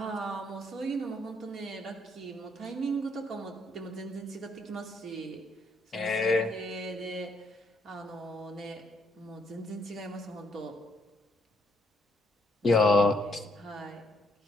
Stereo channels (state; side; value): normal; both; correlation 0.72